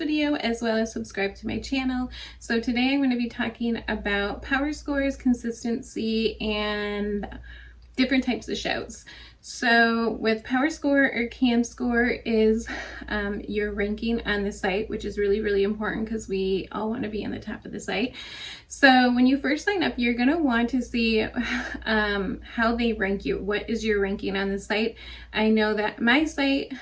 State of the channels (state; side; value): identical; both; correlation 1.00